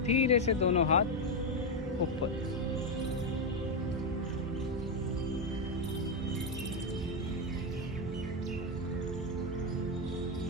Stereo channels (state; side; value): normal; both; correlation 0.06